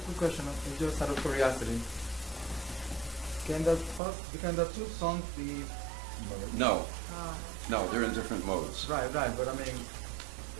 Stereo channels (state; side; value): drops out; left; at 4.0 s